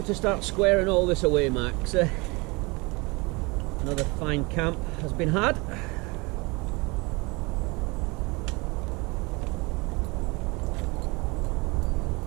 to start squaring all this away, Max. Another fine camp has been had.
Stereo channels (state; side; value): quieter; left; 26.6 dB